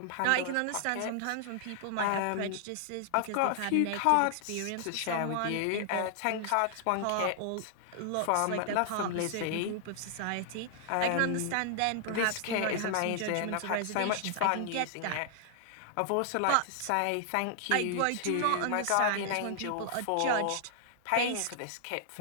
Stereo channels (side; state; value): both; different; correlation 0.00